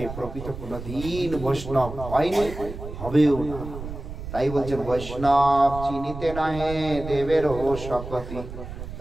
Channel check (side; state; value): right; noise; rumble, 10 dB below the sound